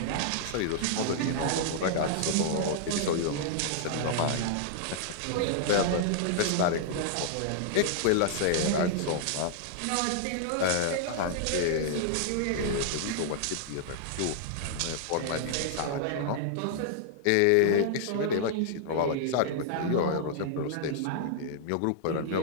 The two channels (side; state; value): both; different; correlation -0.01